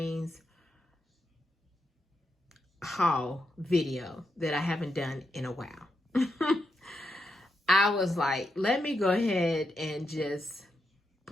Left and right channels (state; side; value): normal; both; correlation 0.84